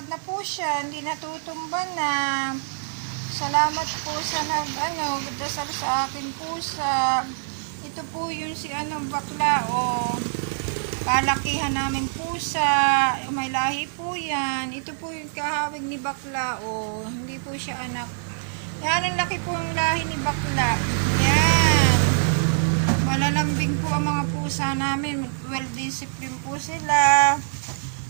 na po siya, hindi natutumba na. Salamat po sa dasal sa akin pusa. Ito po yung si bakla, palakihan namin pusa. May lahi po yan. Ito po yung kahawig ni bakla, hindi po siya anak. Yan, ang laki po ang lahi ni bakla. Yan. Malalambing po ang mga pusa namin. Well disciplined po sila.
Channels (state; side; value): silent; left; 62 dB below the other